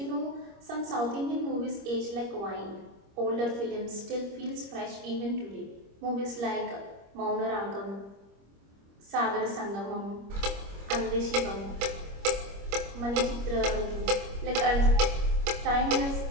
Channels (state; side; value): late; left; 25 ms